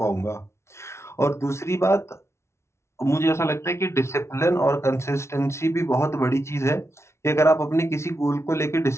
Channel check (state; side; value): late; right; 0.13 ms